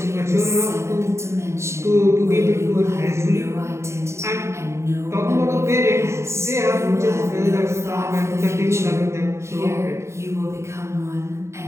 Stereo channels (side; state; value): left; late; 0.13 ms